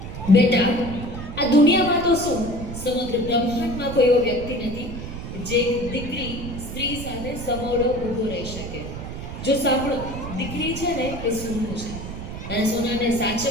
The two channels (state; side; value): noise; right; rumble, 8 dB below the sound